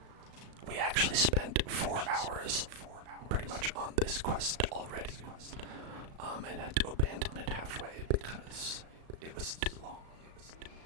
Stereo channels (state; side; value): late; left; 36 ms